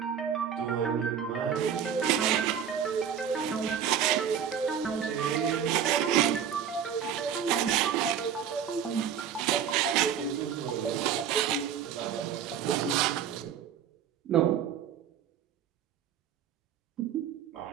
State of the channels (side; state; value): left; quieter; 8.3 dB